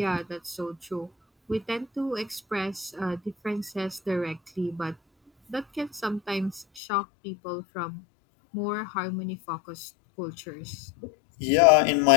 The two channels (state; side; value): drops out; right; at 6.7 s